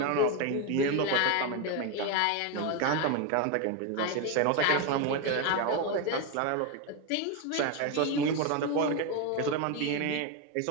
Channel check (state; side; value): different; both; correlation 0.02